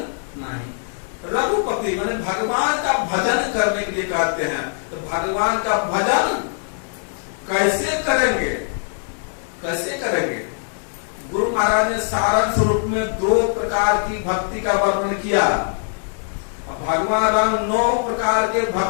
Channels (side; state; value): right; silent; 58 dB below the other